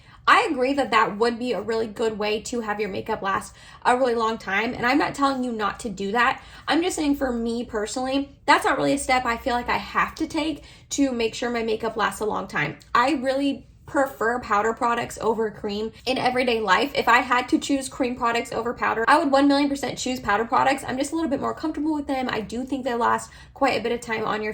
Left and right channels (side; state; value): both; identical; correlation 1.00